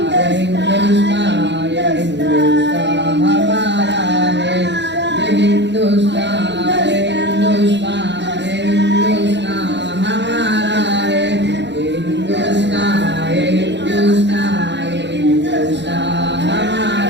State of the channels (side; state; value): left; late; 0.52 ms